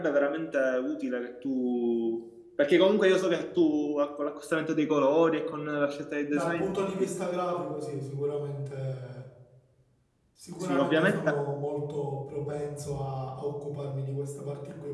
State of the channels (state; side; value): identical; both; correlation 1.00